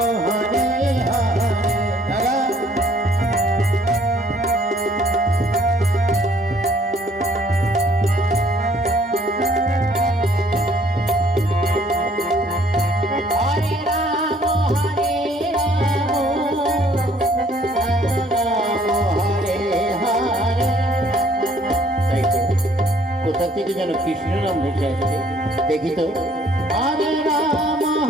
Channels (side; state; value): both; normal; correlation 0.61